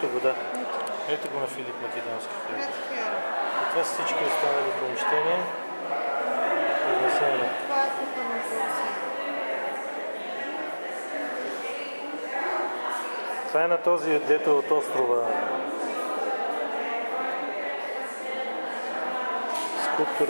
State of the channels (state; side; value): inverted; both; correlation -1.00